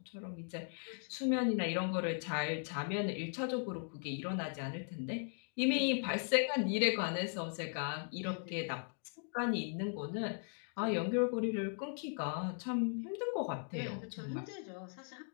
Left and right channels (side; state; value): right; silent; 52 dB below the other